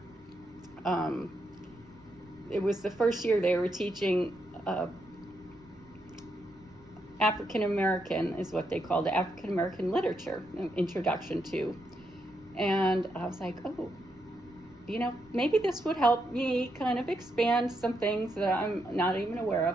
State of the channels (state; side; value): noise; right; rumble, 26 dB below the sound